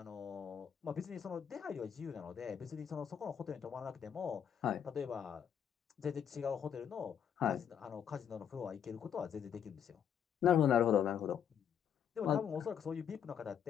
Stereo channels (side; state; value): right; quieter; 8.4 dB